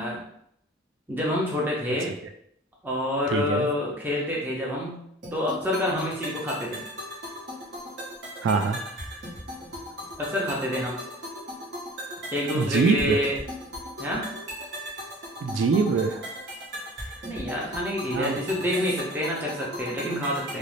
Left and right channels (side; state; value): both; normal; correlation 0.42